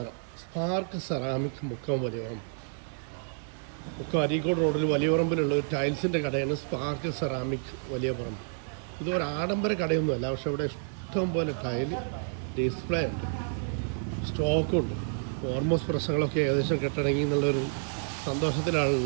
Spark ceramic Mukkam Valiyavarambu. മുക്കം അരീക്കോട് റോഡിൽ വലിയവറമ്പിലുള്ള ഒരു ടൈൽസിൻ്റെ കടയാണ് സ്പാർക്ക് സെറാമിക് വലിയ പറമ്പ്. ഇതൊരു ആഡംബര കടയൊന്നുമല്ല, പക്ഷേ ഇവിടെ ഇഷ്ടം പോലെ ടൈൽ ഡിസ്പ്ലേ ഉണ്ട്, സ്റ്റോക്കുണ്ട്. ഓൾമോസ്റ്റ് പ്രശ്നങ്ങളൊക്കെ ഏകദേശം കെട്ടടങ്ങി എന്നുള്ളൊരു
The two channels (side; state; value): left; silent; 58 dB below the other